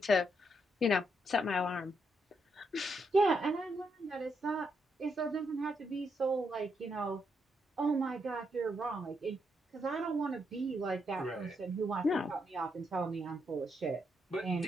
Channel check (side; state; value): both; normal; correlation 0.79